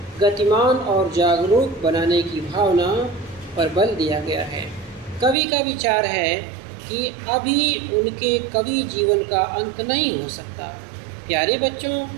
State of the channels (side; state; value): left; drops out; at 5.4 s